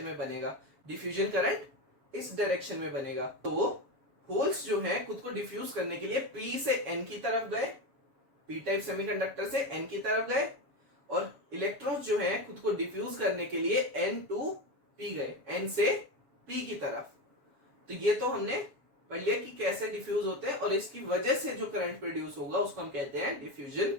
में बनेगा, डिफ्यूजन करंट इस डायरेक्शन में बनेगा। तो होल्स जो है खुद को डिफ्यूज करने के लिए P से N की तरफ गए, P टाइप सेमीकंडक्टर से N की तरफ गए, और इलेक्ट्रॉन्स जो है खुद को डिफ्यूज करने के लिए N टू P गए, N से P की तरफ। तो ये तो हमने पढ़ लिया कि कैसे डिफ्यूज होते हैं और इसकी वजह से जो करंट प्रोड्यूस होगा उसको हम कहते हैं डिफ्यूजन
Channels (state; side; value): late; left; 7.1 ms